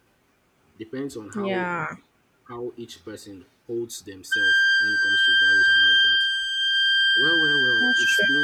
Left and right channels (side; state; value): both; identical; correlation 1.00